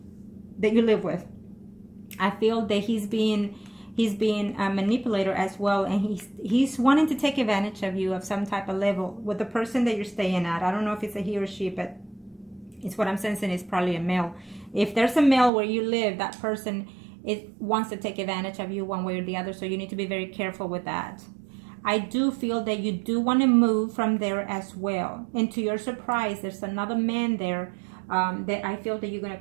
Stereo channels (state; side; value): drops out; left; at 15.5 s